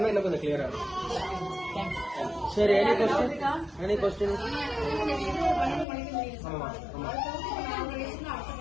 இன்னும் கொஞ்சம் கிளியரா இருக்கும். சரி, எனி கொஸ்டின்? ஆமா ஆமா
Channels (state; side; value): drops out; right; at 5.9 s